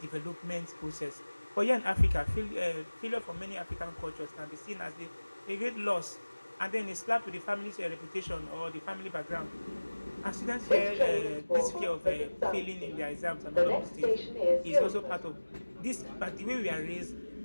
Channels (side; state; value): both; inverted; correlation -1.00